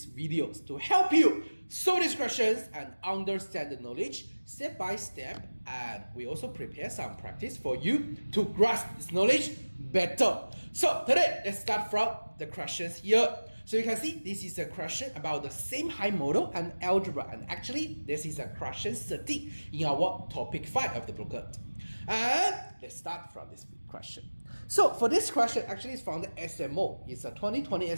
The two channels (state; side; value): inverted; both; correlation -1.00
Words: videos to help you solve these questions and understand the knowledge step by step. And we also prepare some practice for you to grasp this knowledge better. So today, let's start from the questions here. So you can see this is a question about the same high model and algebra, and actually this is a question 13 in our topic 5 of the booklet. And let's start from this question. So for this question, actually it's from the SMO. It's a 2020